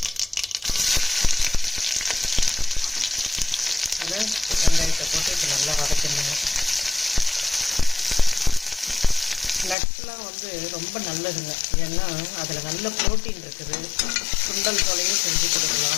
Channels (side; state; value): right; drops out; at 9.8 s